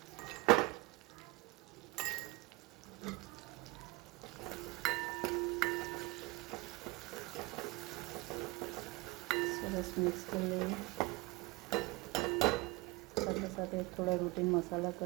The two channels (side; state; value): left; quieter; 24.0 dB